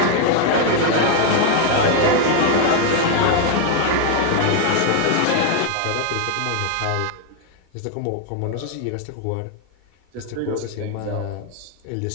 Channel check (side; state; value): both; different; correlation 0.01